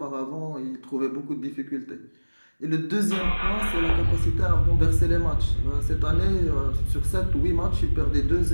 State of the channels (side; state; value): both; inverted; correlation -1.00